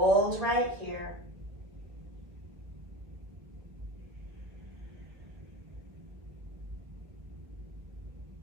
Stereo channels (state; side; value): late; left; 1.7 ms